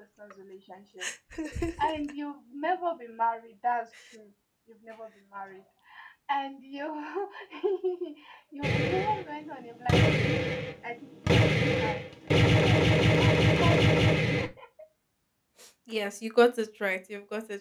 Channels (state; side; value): identical; both; correlation 1.00